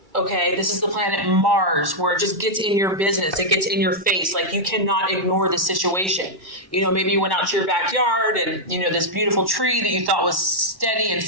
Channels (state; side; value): late; left; 1.1 ms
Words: Okay, this is the planet Mars, where it just gets in your business. It gets in your face. Like you cannot ignore the situation. Maybe you went out to your backyard and, this beautiful tree that you thought was steady and